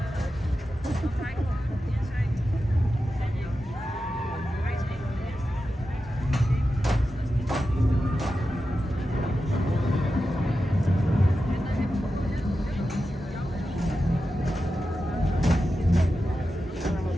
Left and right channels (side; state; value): both; normal; correlation 0.91